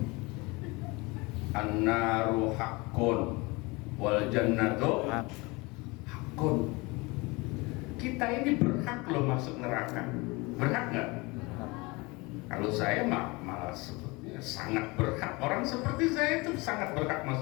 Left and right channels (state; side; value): quieter; right; 25.2 dB